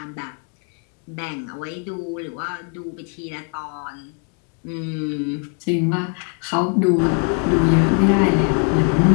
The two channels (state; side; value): quieter; right; 37.8 dB